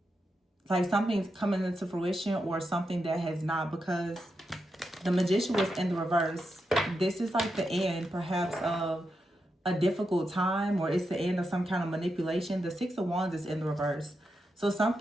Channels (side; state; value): both; normal; correlation 0.86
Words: something's coming into fruition, or something that has not, because the Magician was in the reverse. This is like the end, perhaps, of a difficult time, or it's the end of some kind of manipulation. The Six of Wands is in the reverse. So